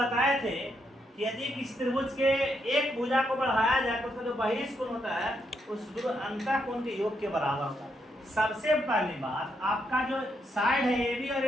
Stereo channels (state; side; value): normal; both; correlation 0.79